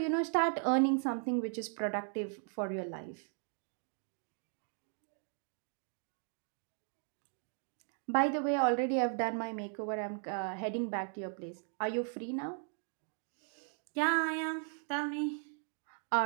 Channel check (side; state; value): left; silent; 53 dB below the other